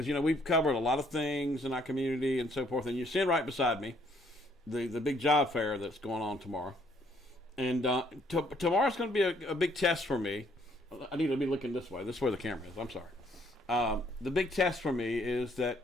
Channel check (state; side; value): normal; both; correlation 0.66